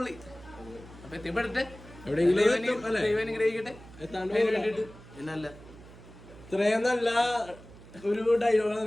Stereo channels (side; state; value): right; noise; hum, 19 dB below the sound